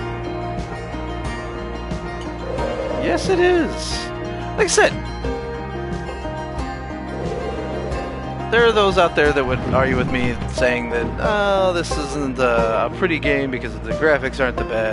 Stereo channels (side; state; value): both; identical; correlation 1.00